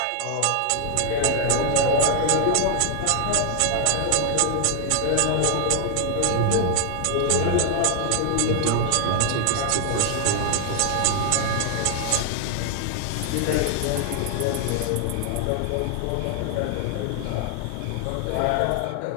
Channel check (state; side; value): different; both; correlation 0.00